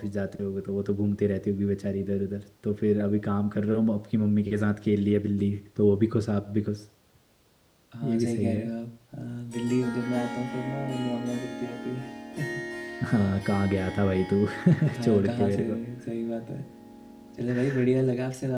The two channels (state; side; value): identical; both; correlation 1.00